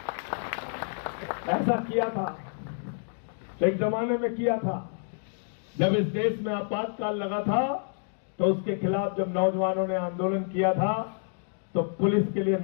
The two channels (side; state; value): right; silent; digital silence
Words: ऐसा किया था, एक जमाने में किया था, जब इस देश में आपातकाल लगा था, तो उसके खिलाफ जब नौजवानों ने आंदोलन किया था तो पुलिस के लिए